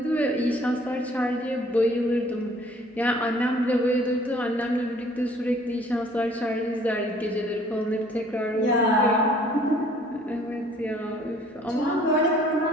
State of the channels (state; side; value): normal; both; correlation 0.56